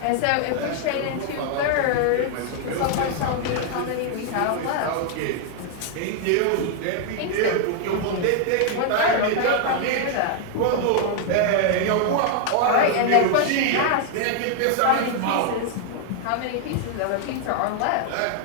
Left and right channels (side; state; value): both; different; correlation 0.00